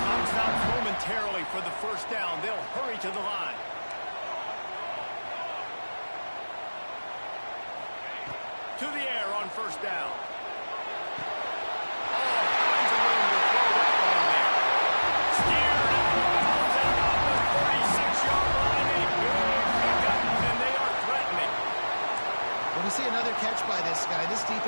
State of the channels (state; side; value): inverted; both; correlation -1.00